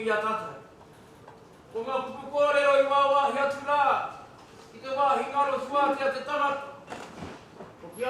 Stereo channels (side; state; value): both; identical; correlation 1.00